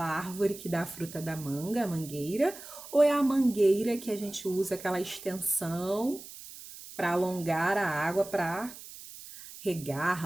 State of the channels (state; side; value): noise; right; hiss, 15 dB below the sound